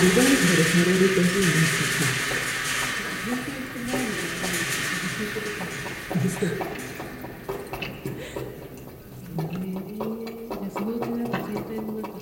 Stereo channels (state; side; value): identical; both; correlation 1.00